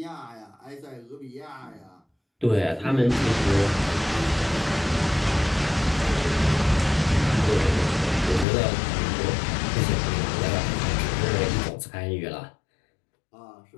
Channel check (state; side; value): drops out; right; at 8.5 s